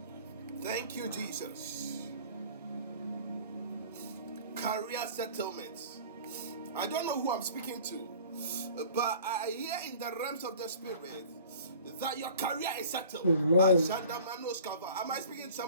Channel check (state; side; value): inverted; both; correlation -0.46